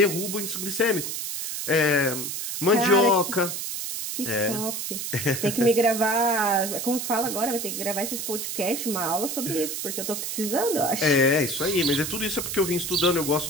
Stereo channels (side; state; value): right; noise; hiss, 4 dB below the sound